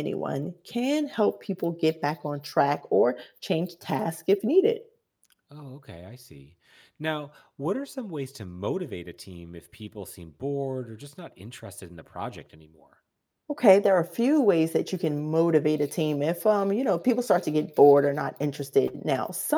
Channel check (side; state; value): both; identical; correlation 1.00